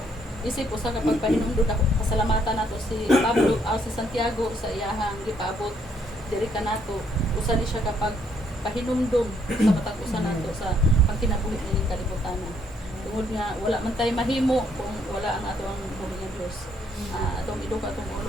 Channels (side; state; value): both; normal; correlation 0.70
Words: isip usa ka pagpahinumdod ako pasalamatan nato si Pablo si Santiago sa iyahang gipaabot diri kanato usa ni siya kapag pahinumdom sa matag usa nato sa pagkinabuhi ni kalibutan. Tungod nga wala man tay mahimo kung wala ang ato ang buhi nga Dios. Atong iduka atong ulo